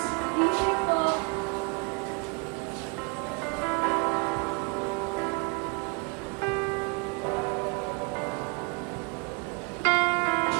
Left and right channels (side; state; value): left; quieter; 34.1 dB